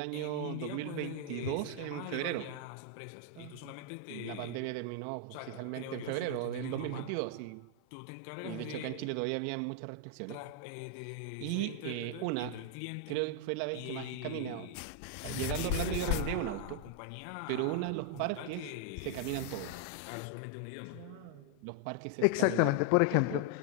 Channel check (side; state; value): both; different; correlation 0.00